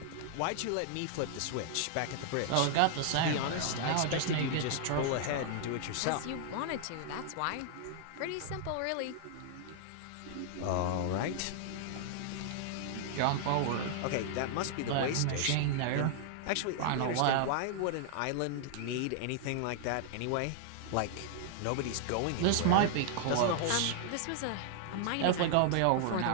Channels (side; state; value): both; different; correlation -0.01